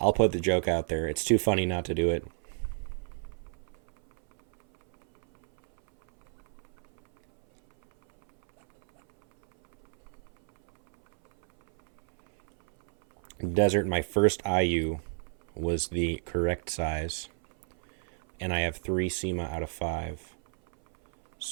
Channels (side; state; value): left; silent; 58 dB below the other